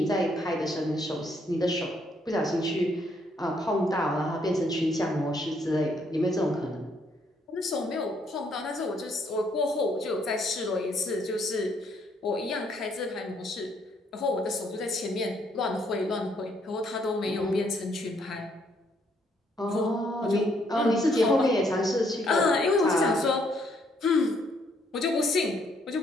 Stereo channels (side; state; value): both; normal; correlation 0.70